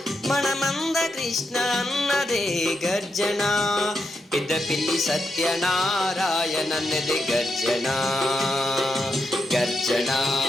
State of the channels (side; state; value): both; normal; correlation 0.84